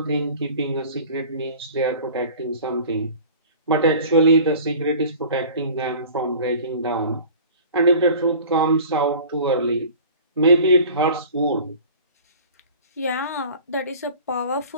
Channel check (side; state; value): both; inverted; correlation -0.43